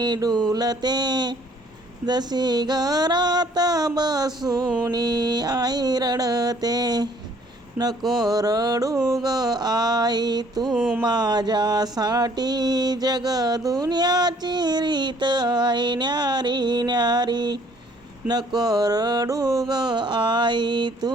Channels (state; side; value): normal; both; correlation 0.60